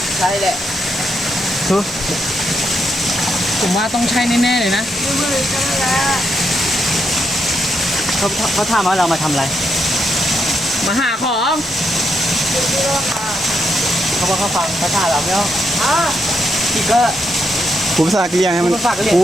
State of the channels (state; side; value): normal; both; correlation 0.80